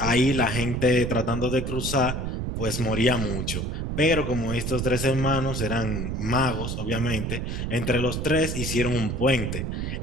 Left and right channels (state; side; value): noise; right; rumble, 3 dB below the sound